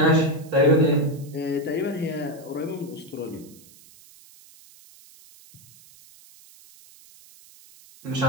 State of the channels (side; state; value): right; noise; hiss, 24 dB below the sound